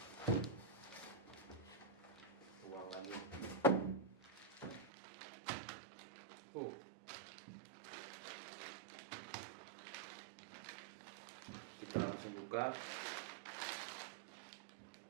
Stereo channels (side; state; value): left; drops out; at 4.9 s